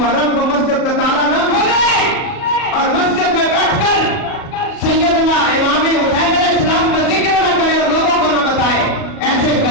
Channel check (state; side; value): late; right; 37 ms